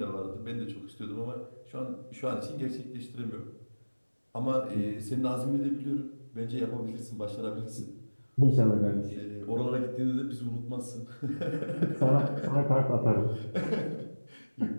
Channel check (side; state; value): both; inverted; correlation -1.00